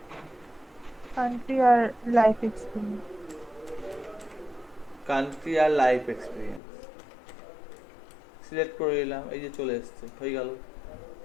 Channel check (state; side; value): drops out; right; at 6.6 s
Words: কান্ট্রি আর লাইফ এক্সপিরিয়েন্স। কান্ট্রি আর লাইফ এক্সপিরিয়েন্স সিলেক্ট করে নিলাম, এই যে চলে এসছে, হয়ে গেল।